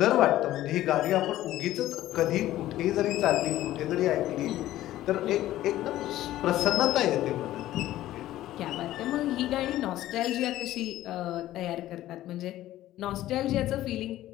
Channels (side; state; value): right; quieter; 14.4 dB